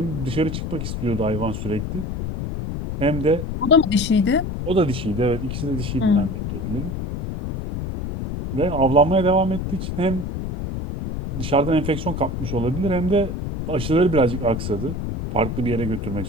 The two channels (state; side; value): noise; left; rumble, 5 dB below the sound